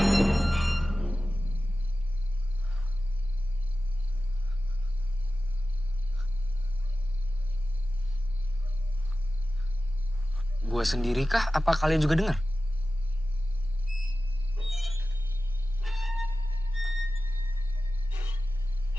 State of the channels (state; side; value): normal; both; correlation 0.95